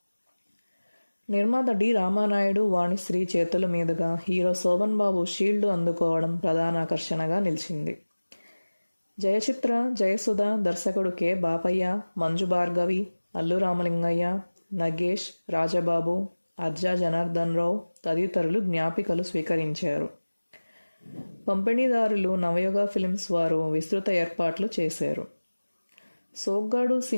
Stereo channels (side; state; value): both; inverted; correlation -1.00